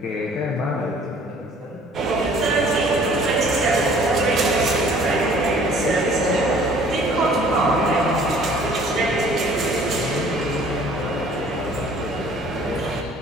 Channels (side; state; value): both; normal; correlation 0.54